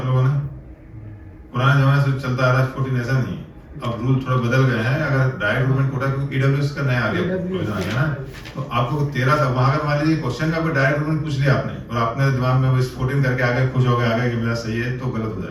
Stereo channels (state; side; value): identical; both; correlation 1.00